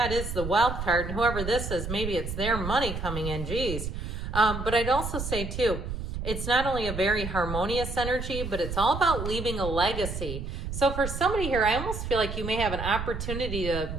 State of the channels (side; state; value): right; noise; rumble, 6 dB below the sound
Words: it is the wealth card. And whoever this is, maybe it's their money coming in, geez. But I'd also say, too, it's not only a very harmonious energy, but it's all about leaving a legacy. So for somebody here, I almost feel like you may have an opportunity to